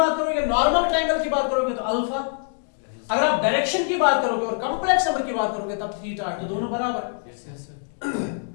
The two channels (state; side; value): silent; right; 63 dB below the other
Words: करोगे, नॉर्मल ट्रायंगल की बात करोगे तो अल्फा, अगर आप डायरेक्शन की बात करोगे और कॉम्प्लेक्स नंबर की बात करोगे तब थीटा है, तो दोनों बराबर है।